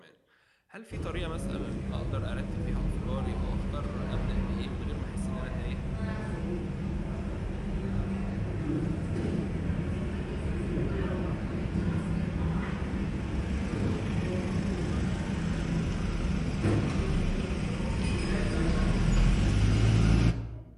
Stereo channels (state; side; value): identical; both; correlation 1.00